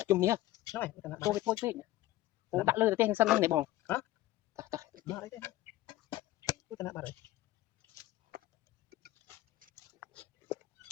chung nhá nói tô với thôi ô đã lơ tên sân này bỏng hả đó đấy cái tên bà đấy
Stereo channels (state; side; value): quieter; right; 16.1 dB